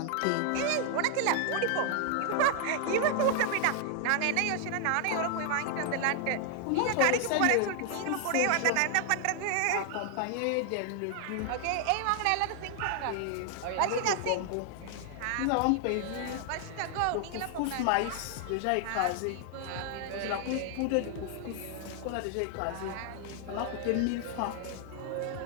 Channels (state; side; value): different; both; correlation 0.00